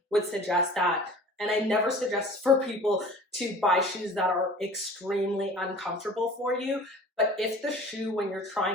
would suggest that, and I never suggest for people to buy shoes that are extremely uncomfortable for you, but if the shoe, when you're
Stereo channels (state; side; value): normal; both; correlation 0.44